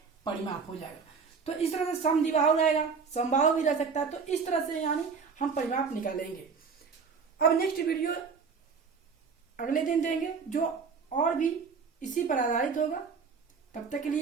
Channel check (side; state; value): left; quieter; 5.5 dB